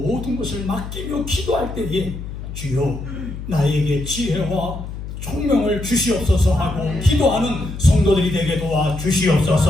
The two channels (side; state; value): left; noise; hum, 9 dB below the sound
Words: 것을 맡기며 기도할 때에 주여 나에게 지혜와 총명을 주시옵소서 하고 기도하는 성도들이 되게